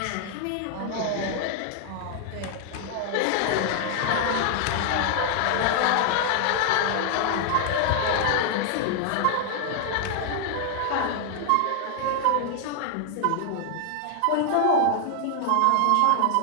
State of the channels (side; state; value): both; different; correlation 0.00